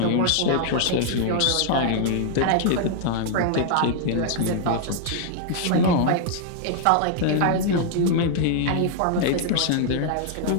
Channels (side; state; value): both; different; correlation 0.00